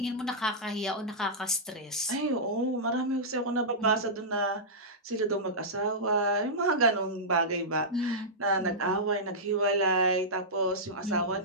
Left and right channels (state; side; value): normal; both; correlation -0.13